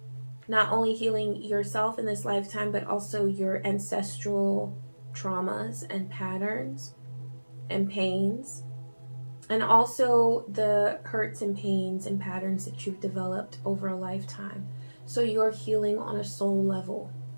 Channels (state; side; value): inverted; both; correlation -1.00